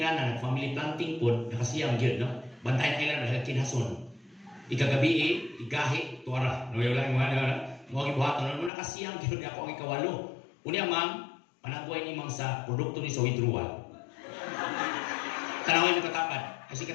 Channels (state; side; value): drops out; right; at 8.7 s